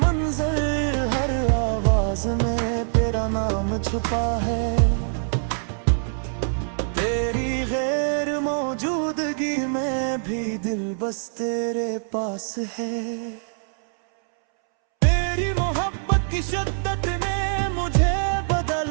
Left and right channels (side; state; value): left; silent; 63 dB below the other